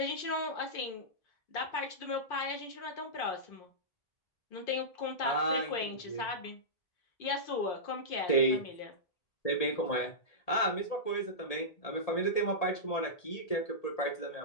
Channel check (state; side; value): late; right; 1.8 ms